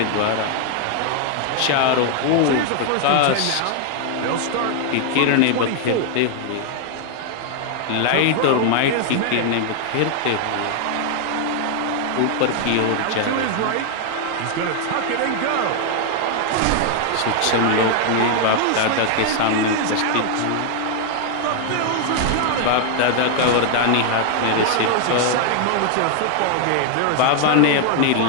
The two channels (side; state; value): both; different; correlation 0.00